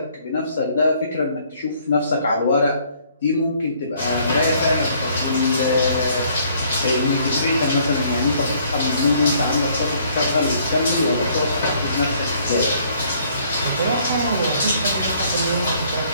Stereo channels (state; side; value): inverted; both; correlation -0.63